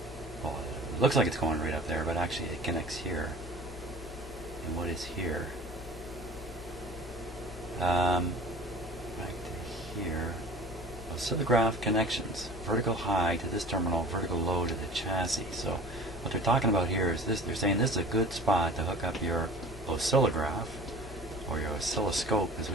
well, it looks like it's going right up there, but actually it connects here. And what is here? Back to here. Oscillograph connections. Vertical high to this terminal, vertical low to the chassis. So what they're talking about here is this. They're saying this is a good spot to hook up your oscillograph, or your oscilloscope as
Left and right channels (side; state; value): both; normal; correlation 0.42